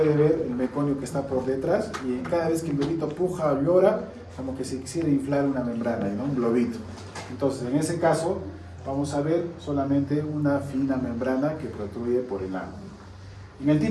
ver el meconio que está por detrás, y cada vez que el bebito puja o llora, como que se quisiera inflar una membrana, ¿no? Un globito. Entonces, en ese caso, vamos a ver solamente una fina membrana que protruye por el ano. En el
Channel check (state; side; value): identical; both; correlation 1.00